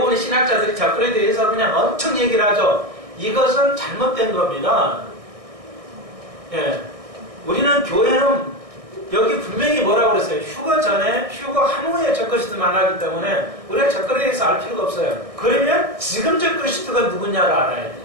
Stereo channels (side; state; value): left; late; 1.6 ms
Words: 신학자들이 적그리스도에 대해서 그냥 엄청 얘기를 하죠. 이것은 잘못된 겁니다. 예. 우리는 교회는 여기 분명히 뭐라고 그랬어요? 휴거 전에, 휴거 한 후에 적그리스도 만나기 때문에 우리가 적그리스도에 대해서 알 필요가 없어요. 그러면 지금 적그리스도가 누구냐를 알아야 돼요.